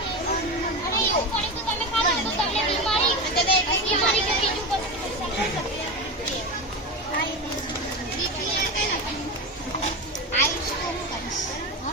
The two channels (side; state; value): both; normal; correlation 0.21